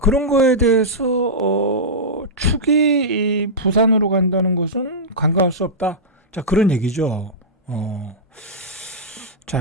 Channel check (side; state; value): both; normal; correlation -0.12